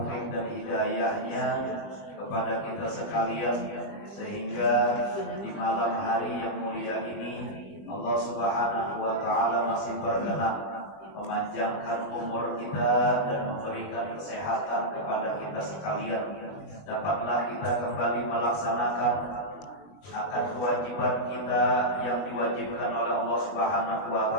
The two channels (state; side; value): late; right; 20 ms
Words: dan hidayahnya kepada kita sekalian sehingga di malam hari yang mulia ini Allah Subhanahu wa taala masih berkenan memanjangkan umur kita dan memberikan kesehatan kepada kita sekalian. Dapatlah kita kembali melaksanakan akan kewajiban kita yang diwajibkan oleh Allah Subhanahu wa